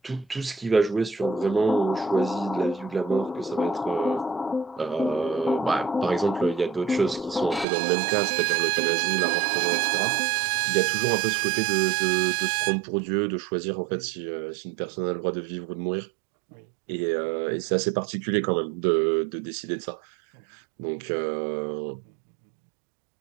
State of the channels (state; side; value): drops out; left; at 7.7 s